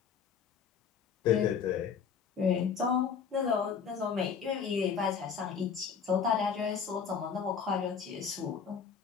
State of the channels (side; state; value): right; quieter; 6.7 dB